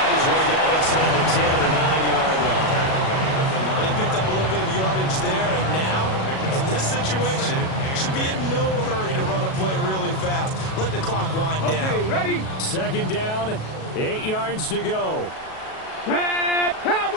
his way down inside the 10 to the 9-yard line. But he picked up a little bit of yardage there, and now, in this situation, should be in no hurry to run a play really fast. Let the clock wind down. Okay, ready. Second down, 8 yards to go.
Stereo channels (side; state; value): right; late; 37 ms